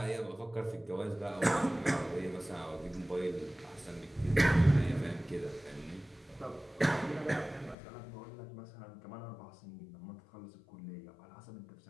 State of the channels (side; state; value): right; drops out; at 7.8 s